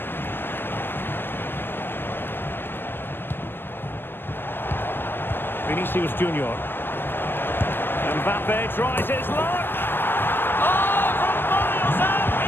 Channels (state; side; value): late; right; 0.099 ms